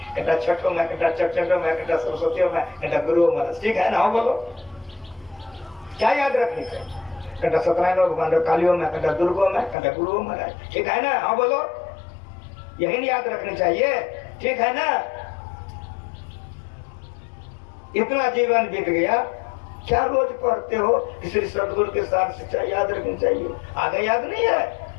घंटा छठों में, घंटा चटचटों में, घंटा सरस्वतियों में, घंटा गुरु में, ठीक है ना? हाँ बोलो। क्या याद रखनी चाहिए? घंटा सत्यनारायण भगवान कालियों में, घंटा दुर्गो में, घंटा गुरु में, ठीक है ना? हाँ बोलो। यही याद रखनी चाहिए, ठीक है ना? इतना जीवन बीत गया, क्या रोज पढ़ते हो? श्री सदगुरु के साथ शिक्षा याद रखनी चाहिए। आगे याद नहीं है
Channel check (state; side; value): drops out; right; at 9.8 s